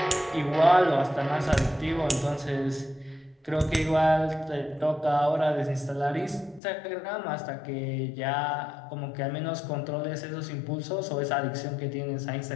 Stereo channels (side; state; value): right; drops out; at 6.6 s